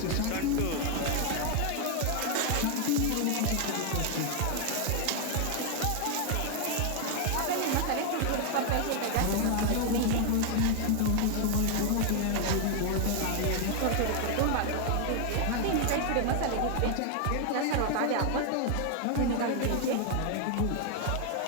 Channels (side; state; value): both; different; correlation 0.01